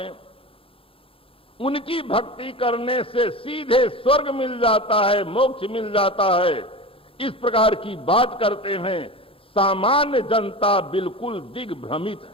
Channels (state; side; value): late; right; 0.27 ms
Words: उनकी भक्ति करने से सीधे स्वर्ग मिल जाता है, मोक्ष मिल जाता है, इस प्रकार की बात करते हैं। सामान्य जनता बिल्कुल दिग्भ्रमित